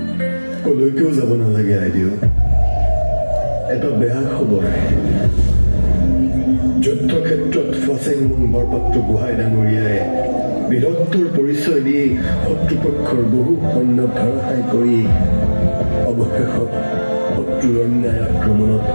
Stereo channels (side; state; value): both; inverted; correlation -1.00